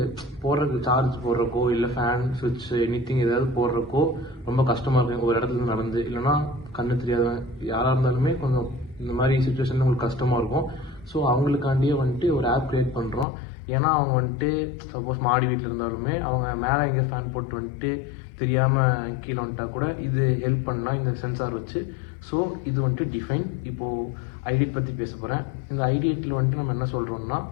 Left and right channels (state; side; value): drops out; right; at 13.2 s